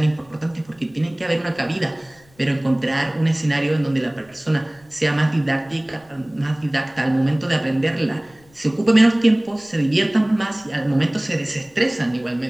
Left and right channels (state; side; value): noise; left; rumble, 30 dB below the sound